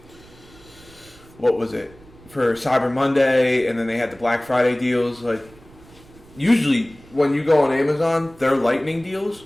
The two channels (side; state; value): right; noise; rumble, 24 dB below the sound